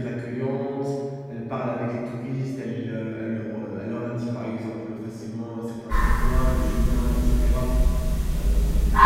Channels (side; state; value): both; identical; correlation 1.00